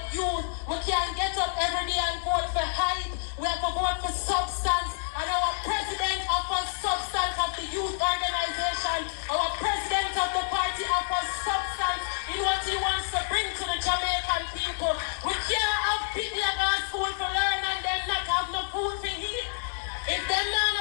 youth, we can't get up every day and vote for hype. We have to vote for substance, and our president offers substance of the youth organization. Our president of the party offers substance in what he wants to bring to the Jamaican people. We can't have people that go to school for learn and then not have no food for eat. If them not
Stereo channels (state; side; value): silent; right; 59 dB below the other